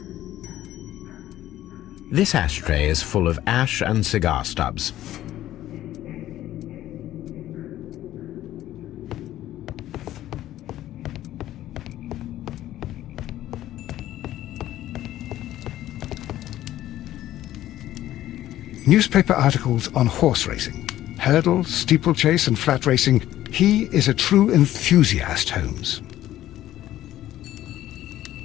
This ashtray is full of ash and cigar stubs. Newspaper articles on horse racing. Hurdle, steeplechase and flat racing. He is a true enthusiast, Holmes.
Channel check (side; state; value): right; quieter; 13.6 dB